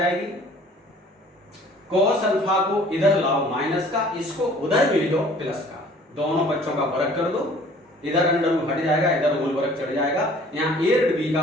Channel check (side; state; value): both; normal; correlation 0.52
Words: कॉस अल्फा को इधर लाओ माइनस का, इसको उधर भेजो प्लस का, दोनों बच्चों का वर्ग कर दो, इधर अंडर रूट हट जाएगा, इधर होल वर्ग चढ़ जाएगा, यहाँ ए और बी का